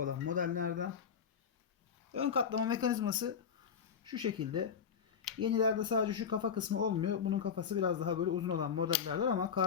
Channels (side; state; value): right; quieter; 7.0 dB